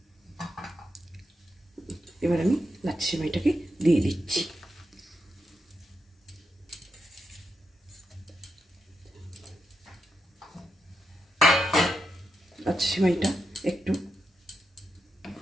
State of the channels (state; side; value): normal; both; correlation 0.86